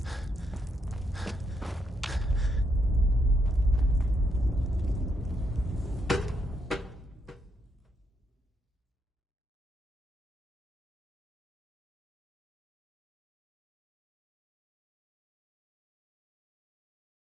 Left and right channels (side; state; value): both; normal; correlation 0.77